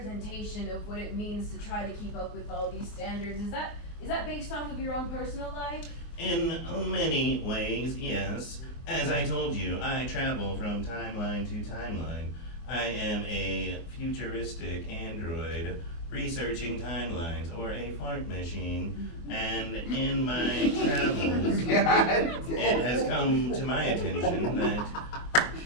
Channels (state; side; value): late; right; 24 ms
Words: of what it means to try to keep up with all these standards. Is that based off of your own personal life? In many ways, yes. As I told you, I travel from timeline to timeline. I am a futuristic android researching timelines or a fart machine, and in my travels, it has come to my attention that